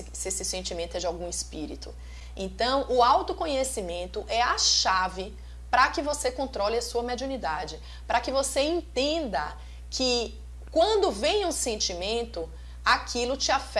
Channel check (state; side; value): identical; both; correlation 1.00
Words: sentimento é de algum espírito? Então, o autoconhecimento é a chave para que você controle a sua mediunidade, para que você entenda que quando vem um sentimento, aquilo te